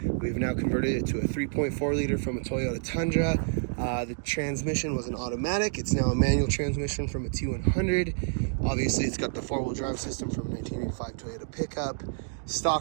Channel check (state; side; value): silent; left; digital silence